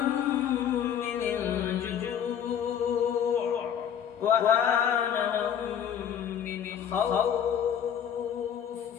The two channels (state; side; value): quieter; right; 8.9 dB